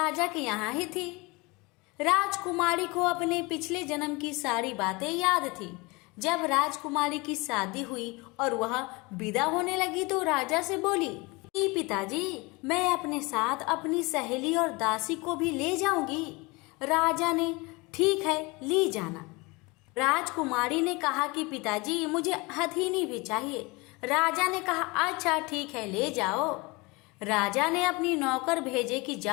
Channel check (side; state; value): right; quieter; 25.5 dB